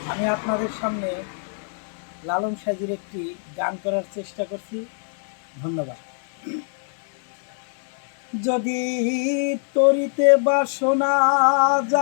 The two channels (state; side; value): silent; right; digital silence